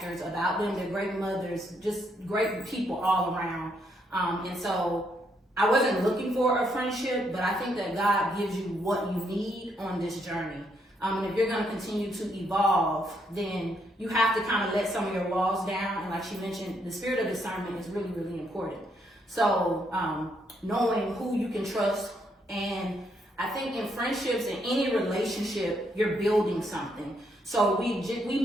about them. They're great mothers, just great people all around. And so I wasn't looking for a friendship, but I think that God gives you what you need on this journey. And if you're going to continue to evolve, then you have to kind of let some of your walls down. And like she mentioned, the spirit of discernment is really, really important. So knowing who you can trust, and I think in friendships, in any relationship, you're building something. So we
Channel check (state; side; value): normal; both; correlation 0.75